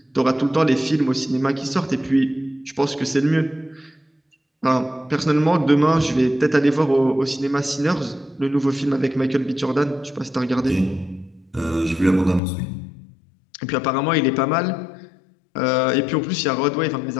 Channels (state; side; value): drops out; right; at 12.4 s